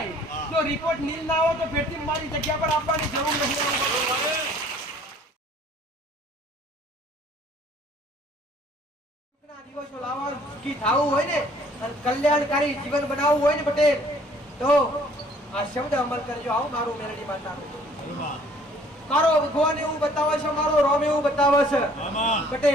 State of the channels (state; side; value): normal; both; correlation 0.57